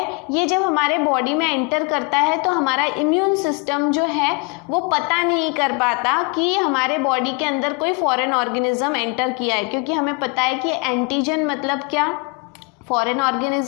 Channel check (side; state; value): right; quieter; 31.5 dB